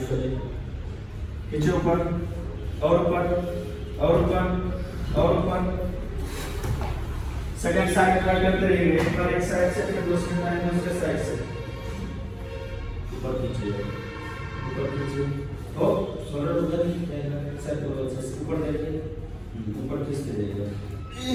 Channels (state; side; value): identical; both; correlation 1.00